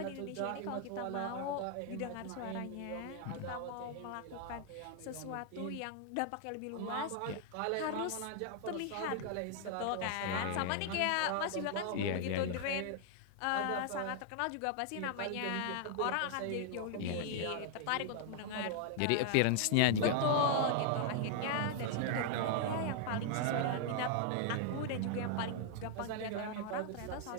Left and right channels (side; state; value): both; different; correlation 0.00